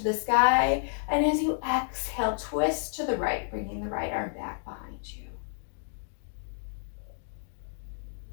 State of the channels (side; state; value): right; silent; digital silence